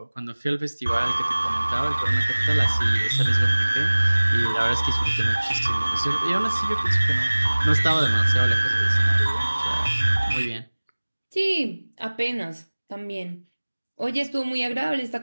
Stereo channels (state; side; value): inverted; both; correlation -1.00